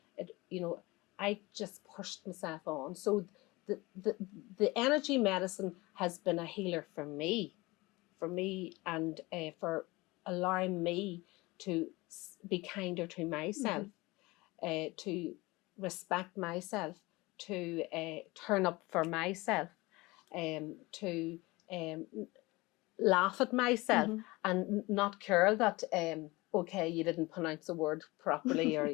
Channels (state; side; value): quieter; right; 22.3 dB